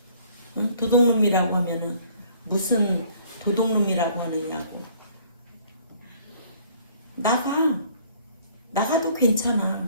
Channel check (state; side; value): inverted; both; correlation -0.58